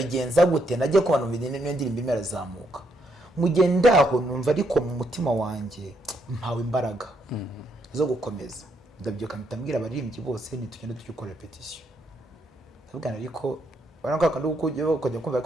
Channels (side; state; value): both; normal; correlation 0.75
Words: gute, najye kubana mu niyo ndirimbe imerazamuka, mugendaho numva ariko mu mutima wanjye mpawe imbaraga zo gukomeza. Ndabyuka mpitambwira abaririmbyi bose nitugenda tukikora repetition, ndabwira ariko baranga kandi ukujya kumva